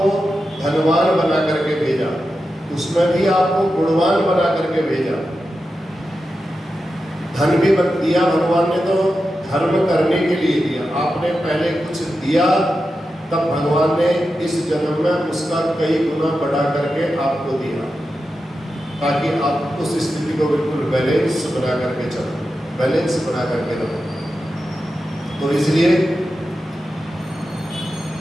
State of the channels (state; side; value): normal; both; correlation 0.90